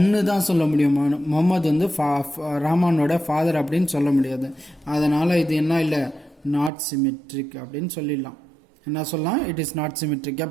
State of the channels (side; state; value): left; drops out; at 6.7 s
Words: தான் சொல்ல முடியும், முகமது வந்து ரஹ்மானோட ஃபாதர் அப்படின்னு சொல்ல முடியாது. அதனால இது என்ன இல்லை, நாட் சிமெட்ரிக் அப்படின்னு சொல்லிடலாம். என்ன சொல்லலாம்? It is not symmetric.